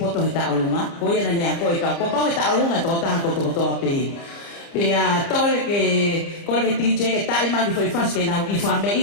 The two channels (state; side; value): late; right; 30 ms